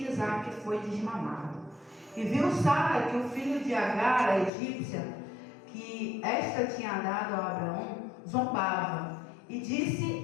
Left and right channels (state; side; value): drops out; right; at 4.5 s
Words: Isaque foi desmamado. E viu Sara que o filho de Agar, a egípcia, que esta tinha dado a Abraão, zombava. E disse